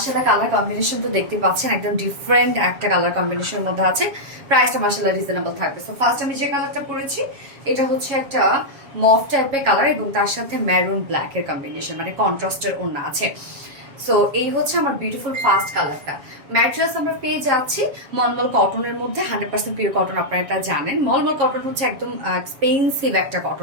কালার কম্বিনেশন তো দেখতে পাচ্ছেন, একদম ডিফারেন্ট একটা কালার কম্বিনেশনের মধ্যে আছে। প্রাইসটা মাশাআল্লাহ রিজনেবল থাকবে। সো ফার্স্ট আমি যে কালারটা পরেছি এটা হচ্ছে একটা মফ টাইপের কালার এবং তার সাথে ম্যারুন ব্ল্যাক এর কম্বিনেশন, মানে কন্ট্রাস্টের ওড়না আছে। সো এই হচ্ছে আমার বিউটিফুল ফার্স্ট কালারটা। ম্যাট্রেস আমরা পেয়ে যাচ্ছি মলমল কটনের মধ্যে, 100% পিওর কটন। আপনারা এটা জানেন, মলমল কটন হচ্ছে একদম এক্সপেন্সিভ একটা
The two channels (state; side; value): late; left; 7.4 ms